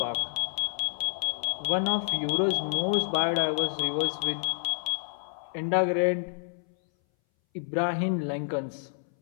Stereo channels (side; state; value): right; silent; 59 dB below the other